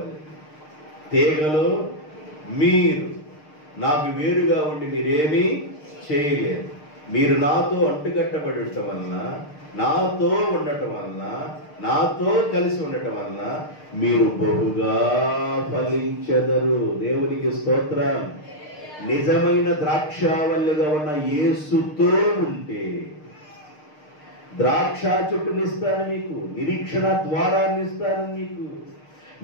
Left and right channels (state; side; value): late; right; 6.6 ms